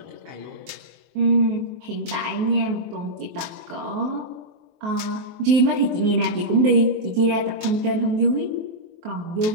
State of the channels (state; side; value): late; left; 23 ms